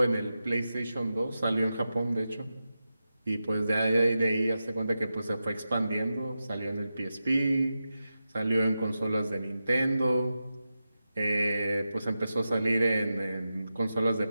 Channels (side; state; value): both; inverted; correlation -0.91